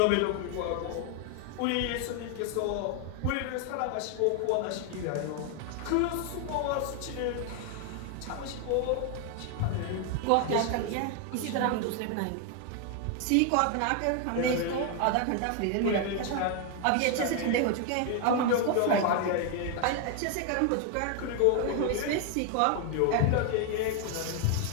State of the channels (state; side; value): different; both; correlation 0.00